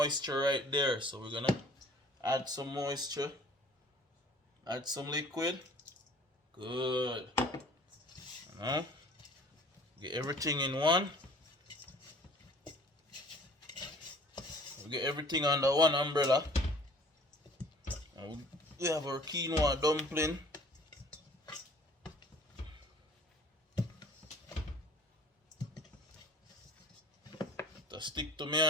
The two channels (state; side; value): normal; both; correlation 0.51